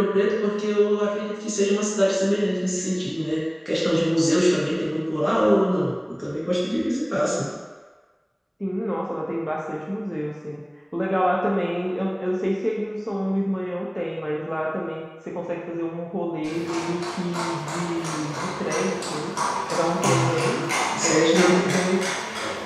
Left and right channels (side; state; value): both; identical; correlation 1.00